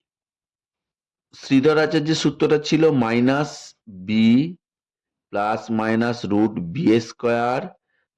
শ্রীধর আচার্যের সূত্রটা ছিল minus b plus minus root b square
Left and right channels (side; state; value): both; identical; correlation 1.00